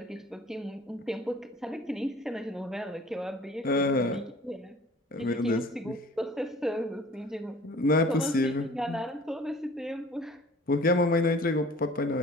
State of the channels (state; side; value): normal; both; correlation 0.48